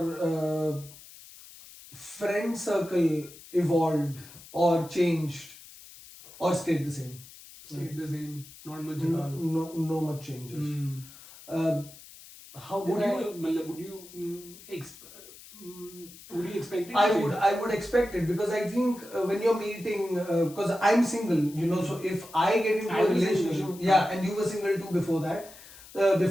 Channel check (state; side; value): noise; left; hiss, 19 dB below the sound